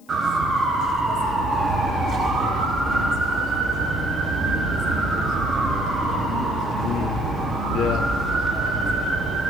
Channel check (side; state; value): left; noise; hiss, 30 dB below the sound